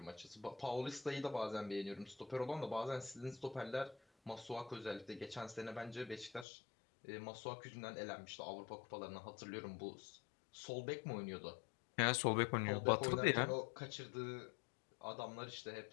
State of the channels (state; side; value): drops out; right; at 6.5 s